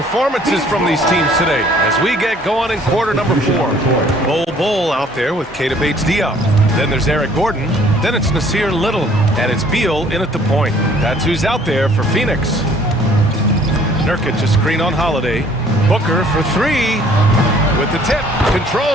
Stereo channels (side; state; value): both; normal; correlation 0.57